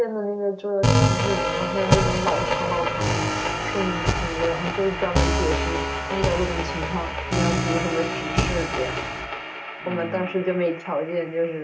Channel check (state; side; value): identical; both; correlation 1.00